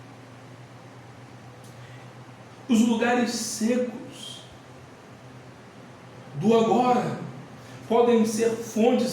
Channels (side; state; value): both; identical; correlation 1.00